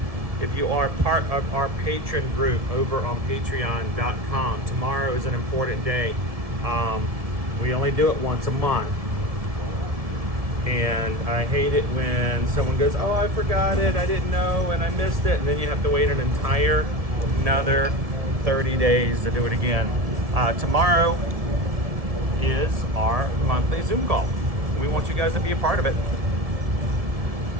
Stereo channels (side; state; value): left; late; 1.7 ms